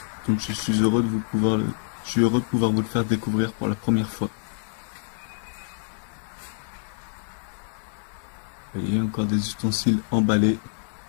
Donc je suis heureux de pouvoir vous le faire découvrir pour la première fois. Vous voyez, encore des ustensiles emballés.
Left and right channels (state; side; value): silent; right; digital silence